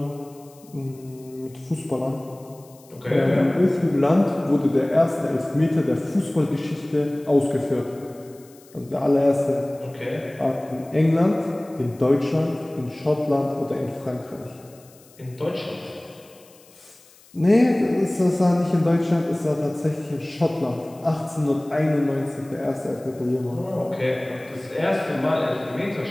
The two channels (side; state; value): left; noise; hiss, 26 dB below the sound